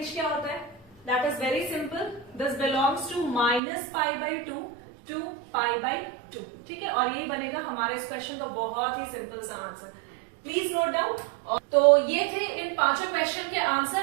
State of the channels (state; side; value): drops out; left; at 3.6 s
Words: क्या होता है, that is very simple, this belongs to minus pi by 2 to pi by 2। ठीक है, और यही बनेगा हमारे इस क्वेश्चन का बहुत ही सिंपल सा आंसर। Please note down. तो ये थे इन पांचों क्वेश्चन के